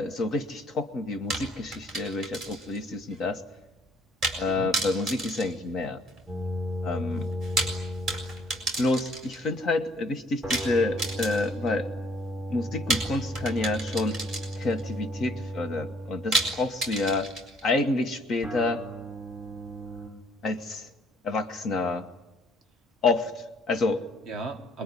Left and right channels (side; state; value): both; normal; correlation 0.62